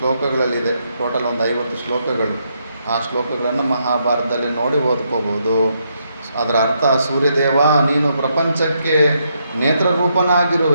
ಟೋಟಲ್ ಒಂದು 50 ಶ್ಲೋಕಗಳು. ಆ ಶ್ಲೋಕಗಳನ್ನು ಮಹಾಭಾರತದಲ್ಲಿ ನೋಡಿ ಓದ್ಕೋಬೋದು. ಅದರ ಅರ್ಥ, ಸೂರ್ಯದೇವ ನೀನು ಪ್ರಪಂಚಕ್ಕೆ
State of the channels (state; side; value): inverted; both; correlation -0.78